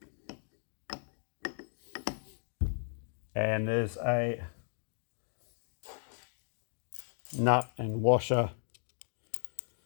And there's a nut and washer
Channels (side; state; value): right; silent; digital silence